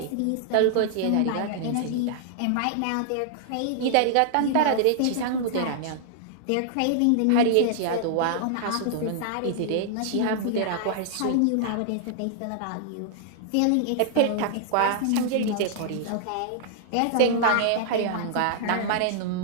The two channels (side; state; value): both; different; correlation -0.01